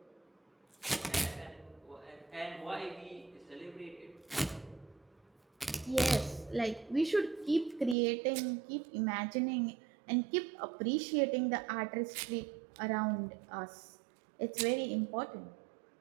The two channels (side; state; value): left; drops out; at 8.0 s